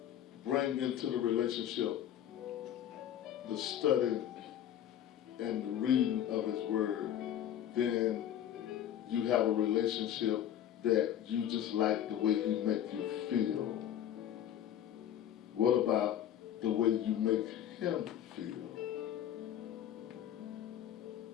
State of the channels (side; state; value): right; quieter; 10.7 dB